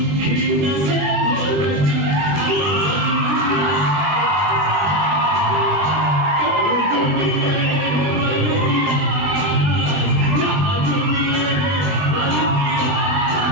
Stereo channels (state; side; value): late; left; 20 ms